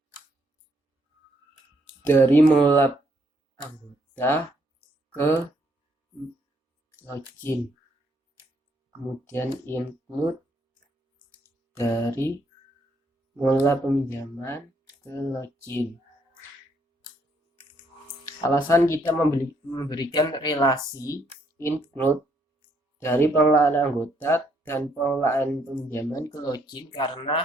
dari mengelola anggota ke login. Kemudian include dari mengelola peminjaman ke login. Alasan kita memberikan relasi include dari pengelolaan anggota dan pengelolaan peminjaman ke login,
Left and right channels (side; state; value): both; normal; correlation 0.71